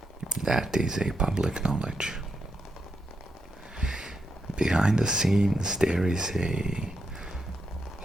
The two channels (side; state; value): both; normal; correlation 0.83